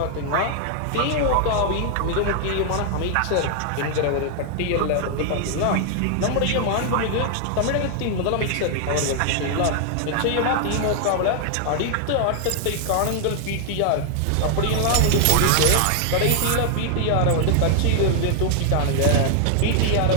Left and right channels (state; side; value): different; both; correlation 0.00